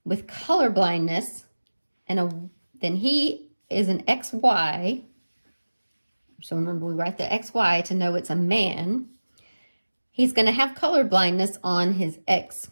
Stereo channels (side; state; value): both; inverted; correlation -1.00